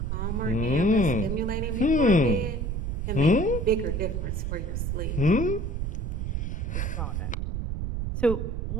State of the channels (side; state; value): right; noise; rumble, 1 dB below the sound